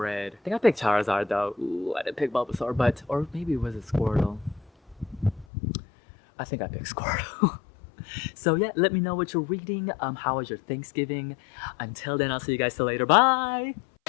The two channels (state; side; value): drops out; right; at 5.5 s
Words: I think I picked Charizard though. Ooh, I didn't pick Bulbasaur, or maybe it was a Squirtle. I think I picked Squirtle. So yeah, let me know what you're reading. How was your Thanksgiving? Until then, I'll see you guys till later. Bye!